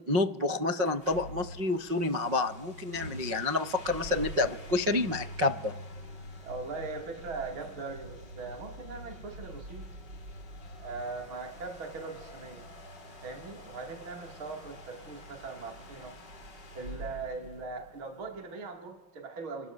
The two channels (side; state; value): left; late; 5.5 ms